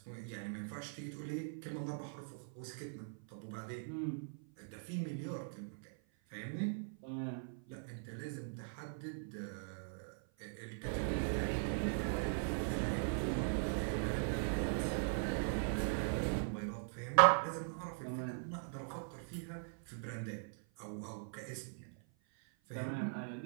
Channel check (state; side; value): silent; left; 50 dB below the other